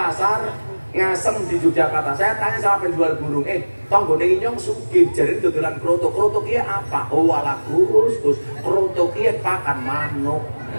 Ngasem di Yogyakarta. Saya tanya sama penjual burung, tonggone inyong sugih jadi dodolan kroto. Kroto kia apa? Oh ala Gus, kroto kia pakan manuk.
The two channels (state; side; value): inverted; both; correlation -1.00